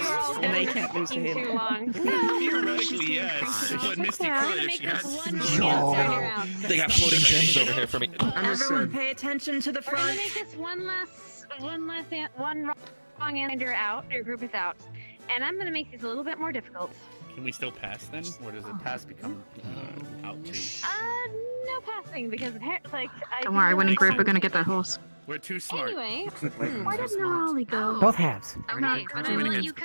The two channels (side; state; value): both; inverted; correlation -1.00